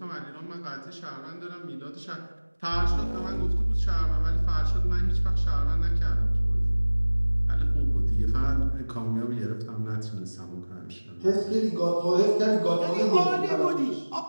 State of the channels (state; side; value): inverted; both; correlation -1.00